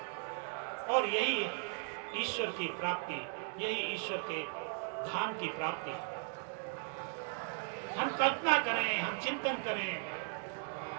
और यही ईश्वर की प्राप्ति, यही ईश्वर के धाम की प्राप्ति। हम कल्पना करें, हम चिंतन करें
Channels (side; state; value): left; silent; 53 dB below the other